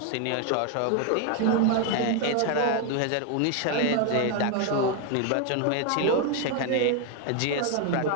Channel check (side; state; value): both; different; correlation 0.01